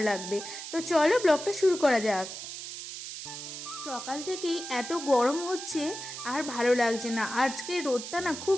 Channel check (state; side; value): noise; right; hiss, 9 dB below the sound